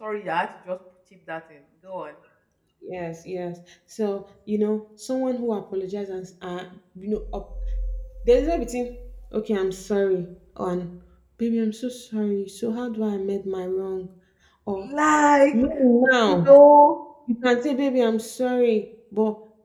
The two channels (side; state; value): both; identical; correlation 1.00